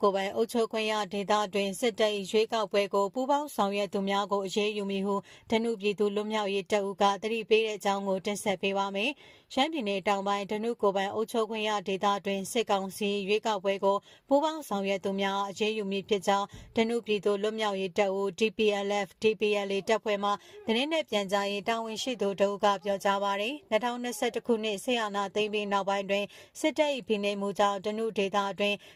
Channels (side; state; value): both; identical; correlation 1.00